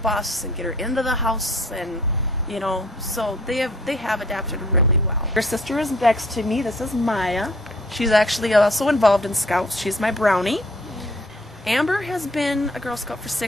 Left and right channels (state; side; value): normal; both; correlation 0.59